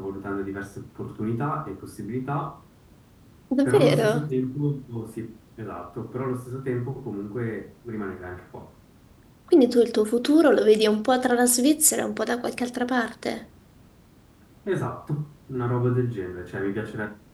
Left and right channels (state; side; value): identical; both; correlation 1.00